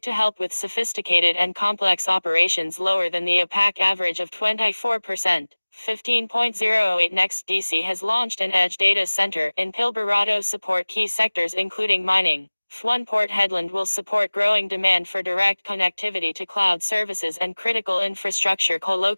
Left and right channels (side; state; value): both; inverted; correlation -1.00